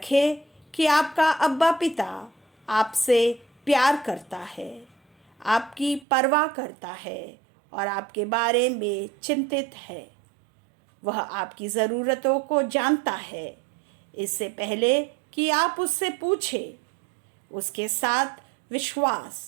कि आपका अब्बा पिता आपसे प्यार करता है, आपकी परवाह करता है और आपके बारे में चिंतित है। वह आपकी ज़रूरतों को जानता है इससे पहले कि आप उससे पूछें। उसके साथ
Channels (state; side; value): drops out; left; at 6.1 s